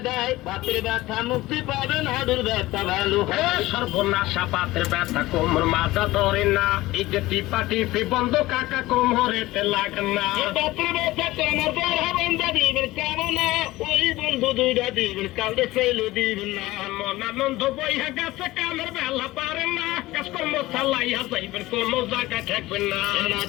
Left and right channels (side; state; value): right; quieter; 18.3 dB